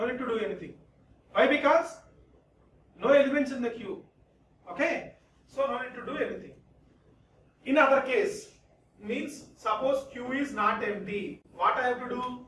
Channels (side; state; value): both; identical; correlation 1.00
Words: need to do anything. Why? Because no elements in the queue. Okay? So no need to do anything. In other case, means suppose queue is not empty. What I have to do?